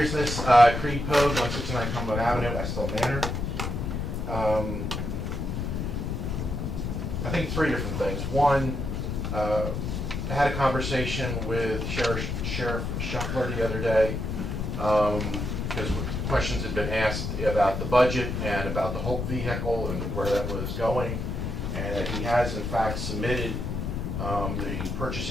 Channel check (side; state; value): left; noise; rumble, 3 dB below the sound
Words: Creed Pogue, 169 Cumberland Avenue, Estill Manor. I think three different things. One, I had a conversation with Sheriff Shuffler the other day, because questions had been asked about the budget and about the Hope vehicle and where that was going, and that he has in fact submitted the